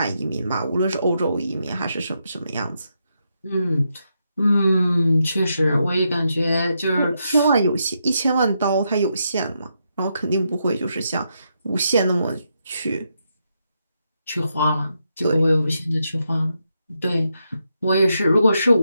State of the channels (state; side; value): inverted; both; correlation -0.82